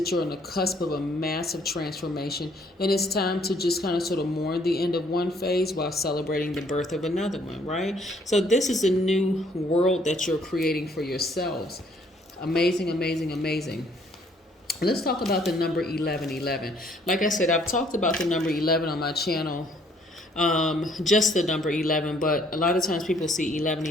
you're on the cusp of a massive transformation, and it's time to just kind of sort of mourn the end of one phase while celebrating the birth of another one, right? So this is a new world that you're creating for yourselves. Amazing, amazing, amazing. Let's talk about the number 1111. Like I said, I've talked about the number 11 on my channel, just the number 11, but a lot of times people see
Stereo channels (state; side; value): normal; both; correlation 0.64